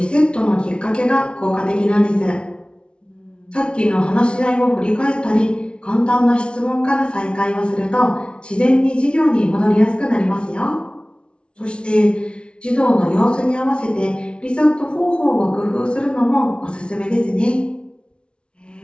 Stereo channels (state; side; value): late; right; 0.058 ms